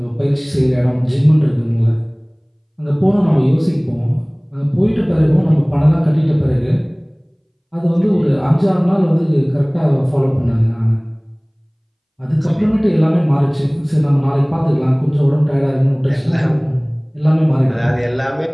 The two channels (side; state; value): both; identical; correlation 1.00